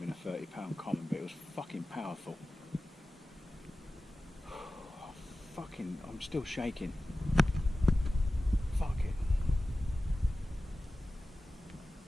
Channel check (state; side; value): normal; both; correlation 0.96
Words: a 30-pound common, but it was fucking powerful. I'm still shaking. Fuck it.